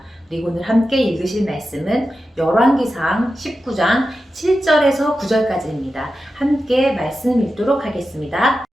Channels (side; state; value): both; normal; correlation 0.91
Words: 그리고 오늘 함께 읽으실 말씀은 열왕기상 19장 7절에서 9절까지입니다. 함께 말씀 읽도록 하겠습니다.